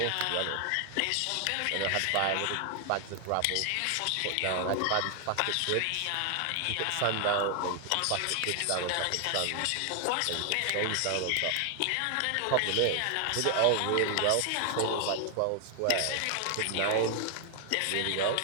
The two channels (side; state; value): both; different; correlation 0.00